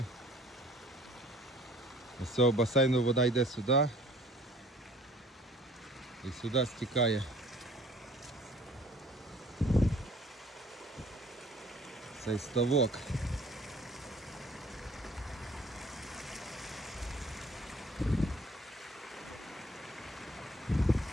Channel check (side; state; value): both; normal; correlation 0.53